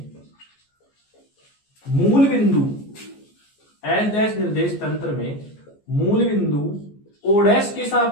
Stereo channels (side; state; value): right; late; 14 ms